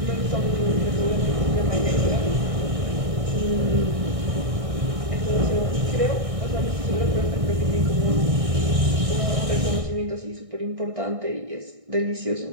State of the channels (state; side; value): late; left; 1.6 ms